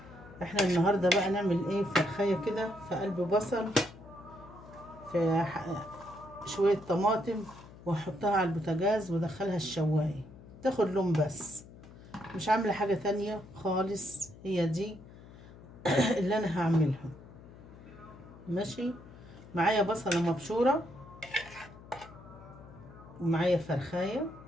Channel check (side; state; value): left; noise; hum, 19 dB below the sound